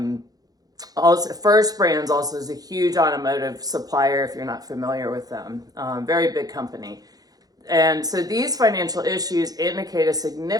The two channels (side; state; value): left; late; 0.18 ms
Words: First Brands also is a huge automotive supplier, if you're not familiar with them. Very big company. And so these financial issues indicate a